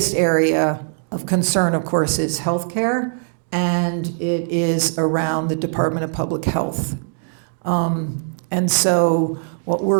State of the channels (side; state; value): left; silent; digital silence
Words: area of concern, of course, is healthcare, and it is around the Department of Public Health. And so what